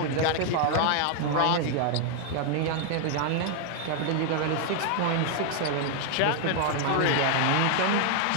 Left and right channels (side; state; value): both; different; correlation 0.00